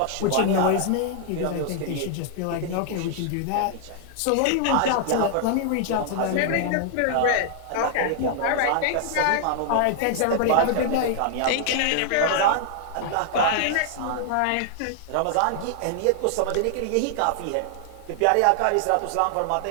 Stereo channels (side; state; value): both; different; correlation 0.00